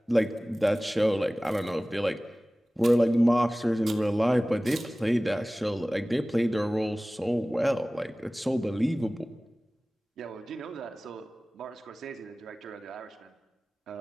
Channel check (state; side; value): normal; both; correlation 0.98